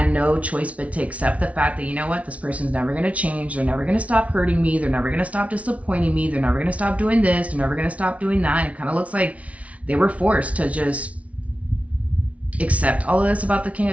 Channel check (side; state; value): left; late; 0.065 ms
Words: no choice but to accept the fact that, you know what, this person's never going to change. They're never going to stop hurting me. They're never going to stop disappointing me. They're never going to stop doing this. They're never going to stop doing that. And it kind of looks like they were forced to just accept all of this about the King